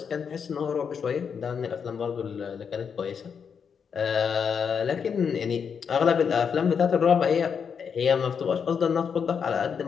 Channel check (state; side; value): quieter; right; 6.7 dB